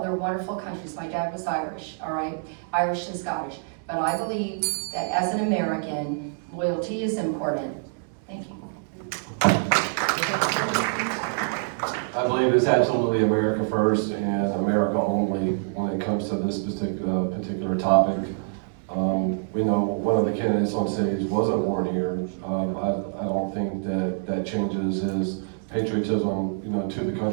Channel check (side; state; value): left; silent; digital silence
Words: wonderful countries. My dad was Irish, all right? Irish and Scottish. But I believe that as an American, loyalty is important. Thank you. I believe it's absolutely America first and America only when it comes to this particular topic. We know one of the candidates on stage wasn't born here. I don't think that changes his patriotism, to the